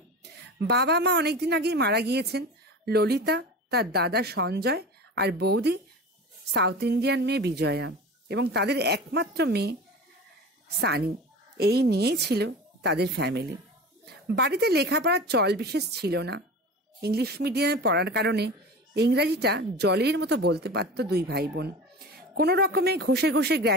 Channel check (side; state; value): both; normal; correlation 0.33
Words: বাবা মা অনেকদিন আগেই মারা গিয়েছেন। ললিতা, তার দাদা সঞ্জয় আর বৌদি সাউথ ইন্ডিয়ান মেয়ে বিজয়া এবং তাদের একমাত্র মেয়ে সানি, এই নিয়েই ছিল তাদের ফ্যামিলি। বাড়িতে লেখাপড়ার চল বিশেষ ছিল না। ইংলিশ মিডিয়ামে পড়ার কারণে ইংরাজিটা জলের মতো বলতে পারত দুই ভাই বোন। কোনো রকমে ঘষে ঘষে